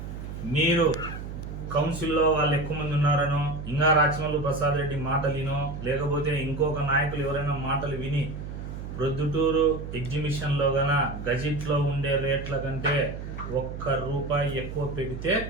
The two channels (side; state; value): right; noise; hum, 8 dB below the sound